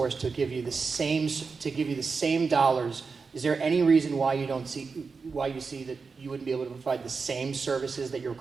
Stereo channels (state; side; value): quieter; left; 4.8 dB